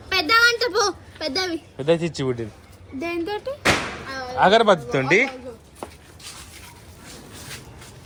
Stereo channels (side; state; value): both; identical; correlation 1.00